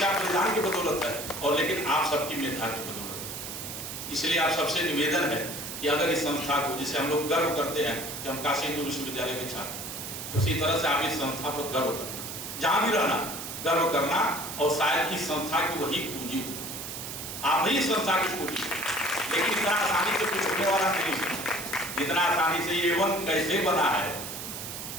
बलिदान की बदौलत है, और लेकिन आप सबकी मेधा की बदौलत है। इसलिए आप सबसे निवेदन है कि अगर इस संस्था को, जिसे हम लोग गर्व करते हैं कि हम काशी हिंदू विश्वविद्यालय के छात्र, उसी तरह से आप इस संस्था पर गर्व करना, जहां भी रहना गर्व करना। और शायद इस संस्था की वही पूंजी हो, आप ही इस संस्था की पूंजी। लेकिन इतना आसानी से कुछ होने वाला नहीं है। इतना आसानी से A1 कैसे बना है?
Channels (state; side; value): noise; right; hiss, 8 dB below the sound